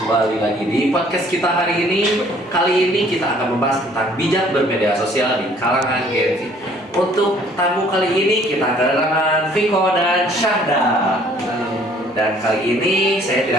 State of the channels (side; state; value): both; normal; correlation 0.58